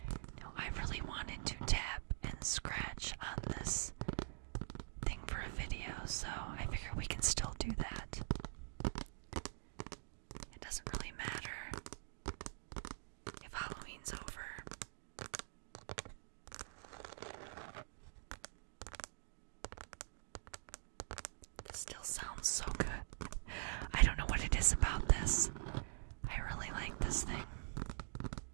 Now, I really wanted to tap and scratch on this thing for a video, so I figure we can still do that. It doesn't really matter if Halloween's over. This still sounds so good. I don't know what it is about this. I really like this thing.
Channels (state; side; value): silent; left; digital silence